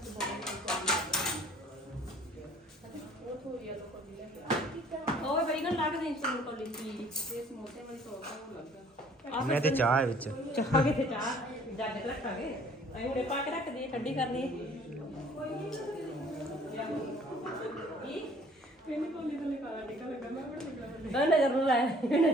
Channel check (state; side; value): normal; both; correlation 0.55